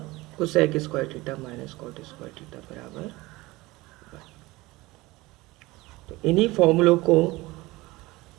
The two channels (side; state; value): left; quieter; 20.7 dB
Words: cosec square theta minus cot square theta बराबर 1। तो इन्हीं फॉर्मूलों को